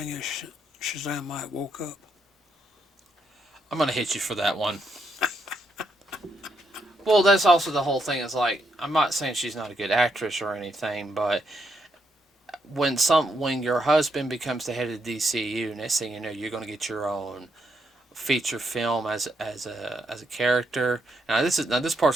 is Shazam might woke up? I'm going to hit you for that one. Well, that's also the whole thing. Is like, I'm not saying she's not a good actress or anything, but when your husband becomes the head of the DCU, next thing you know, you're going to get your own feature film as a character. Now this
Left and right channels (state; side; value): normal; both; correlation 0.78